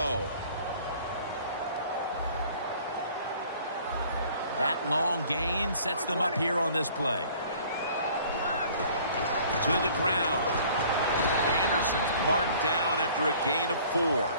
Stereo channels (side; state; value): both; inverted; correlation -0.53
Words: That long gain sets them up here on this play. To the ground. Anderson's marked down after a gain of 4.